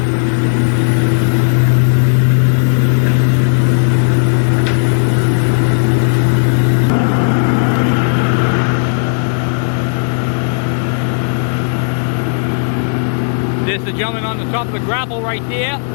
There's the gentleman on the top of the grapple right there,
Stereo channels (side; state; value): right; silent; 69 dB below the other